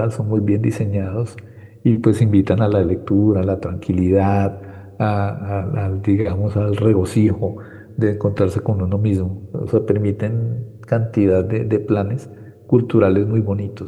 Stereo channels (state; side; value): identical; both; correlation 1.00